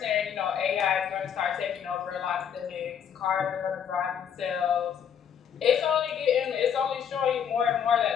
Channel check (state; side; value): quieter; right; 8.2 dB